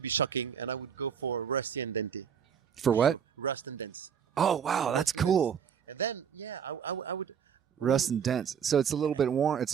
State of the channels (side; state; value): left; quieter; 7.7 dB